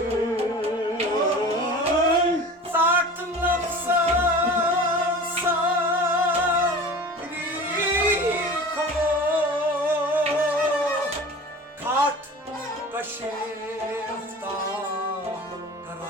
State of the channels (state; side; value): normal; both; correlation 0.38